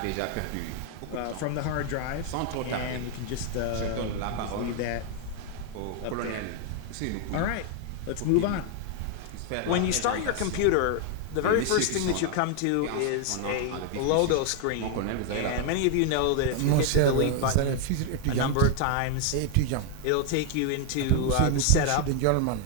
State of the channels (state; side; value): different; both; correlation 0.00